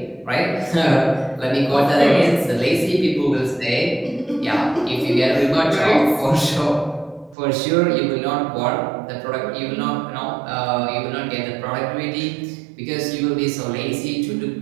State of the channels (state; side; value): drops out; left; at 7.4 s